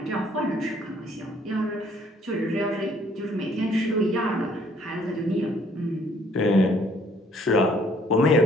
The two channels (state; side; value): normal; both; correlation 0.62